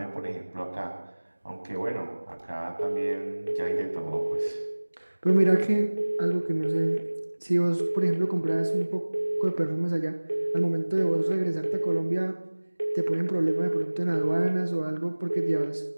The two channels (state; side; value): inverted; both; correlation -1.00